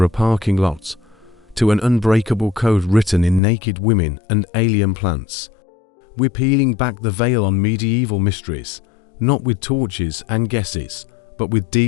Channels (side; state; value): right; drops out; at 3.4 s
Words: a parking lot, to an unbreakable code written in naked women and alien plants, we're peeling back the veil on medieval mysteries, not with torches and guesses, but with